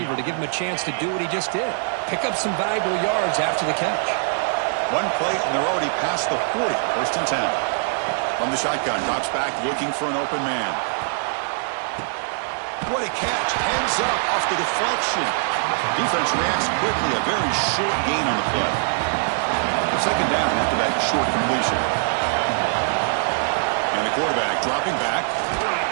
to give him a chance to do what he just did. Pick up some valuable yards after the catch. One play, and they're already past the 40. First and 10. From the shotgun, drops back, looking for an open man. What a catch. Heads up off the deflection. Defense reacts quickly. A very short gain on the play. Second down after that short completion. And the quarterback dropping back.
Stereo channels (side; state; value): left; silent; digital silence